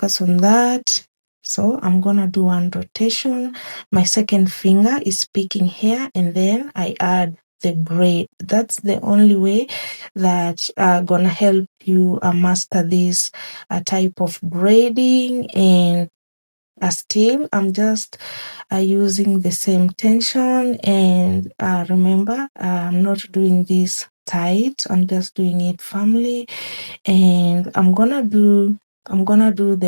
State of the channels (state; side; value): inverted; both; correlation -1.00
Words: on that. So I'm gonna do one rotation, my second finger is picking hair, and then I add the braid. That's the only way that gonna help you master this type of braiding. And still, I'm just using the same tension. And remember, I'm not doing this tight, I'm just doing it firmly. And I'm gonna do